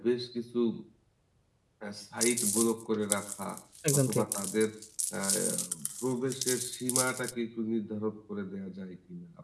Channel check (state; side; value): identical; both; correlation 1.00